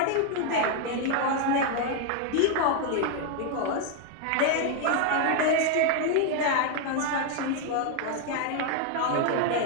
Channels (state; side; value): different; both; correlation 0.00